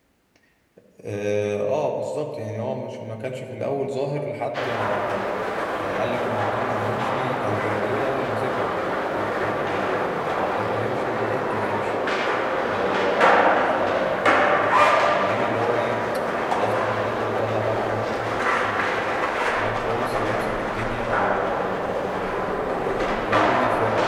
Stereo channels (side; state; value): both; identical; correlation 1.00